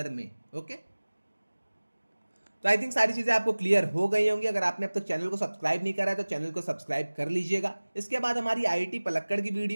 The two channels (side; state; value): both; inverted; correlation -1.00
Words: में, ओके। तो आई थिंक सारी चीजें आपको क्लियर हो गई होंगी। अगर आपने अब तक चैनल को सब्सक्राइब नहीं करा है तो चैनल को सब्सक्राइब कर लीजिएगा। इसके बाद हमारी आईआईटी पलक्कड़ की